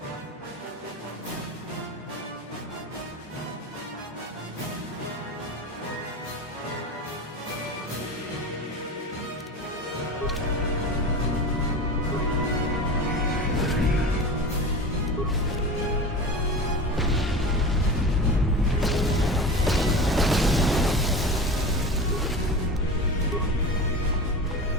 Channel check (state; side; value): normal; both; correlation 0.30